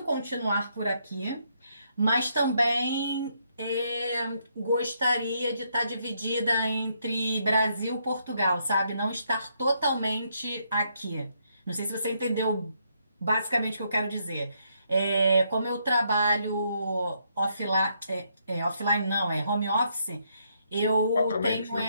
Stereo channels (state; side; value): inverted; both; correlation -0.75